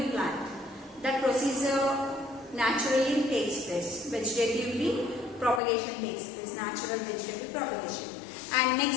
plant. That procedure naturally takes place. Vegetatively propagation takes place, natural vegetative propagation. And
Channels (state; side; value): drops out; right; at 5.6 s